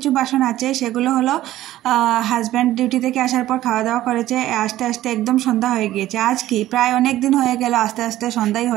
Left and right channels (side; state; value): left; quieter; 14.5 dB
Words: বাসন আছে, সেগুলো হলো হাজব্যান্ড ডিউটি থেকে আসার পর খাওয়া দাওয়া করেছে, আস্তে আস্তে একদম সন্ধ্যা হয়ে গিয়েছে। আজ কি প্রায় অনেক দিন হয়ে গেল আস্তে আস্তে সন্ধ্যাই